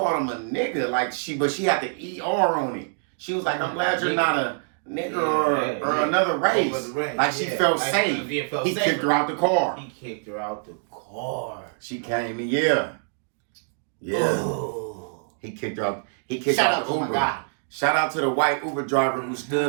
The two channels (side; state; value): left; silent; digital silence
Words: him a nigga. Like but she had the ER on it. She was like, "I'm glad you're not a nigga or another race." Like she felt safe. He kicked her out the car. He kicked her out the car. She came in, yeah. Ooh. He kicked her out. He kicked out the Uber. Shout out to the white Uber driver who